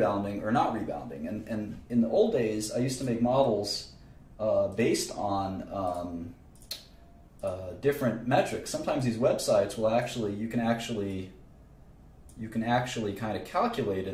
or not rebounding. And in the old days, I used to make models based on different metrics. Sometimes these websites will you can actually kind of calculate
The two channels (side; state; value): both; identical; correlation 1.00